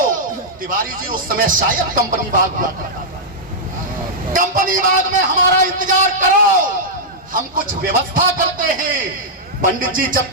तिवारी जी उस समय शायद कंपनी बाग हुआ करता था। कंपनी बाग में हमारा इंतजार करो, हम कुछ व्यवस्था करते हैं। पंडित जी जब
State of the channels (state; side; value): normal; both; correlation -0.08